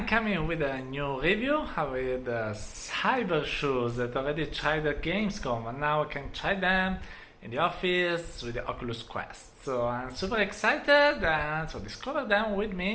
coming with a new review with Cybershoes that already tried at Gamescom, and now I can try them in the office with the Oculus Quest. So I'm super excited, and so discover them with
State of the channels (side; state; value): both; identical; correlation 1.00